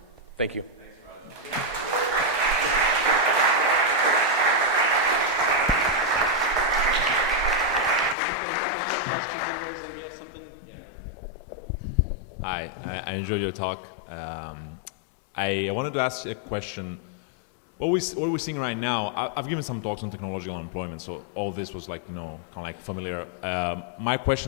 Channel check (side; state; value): right; drops out; at 8.2 s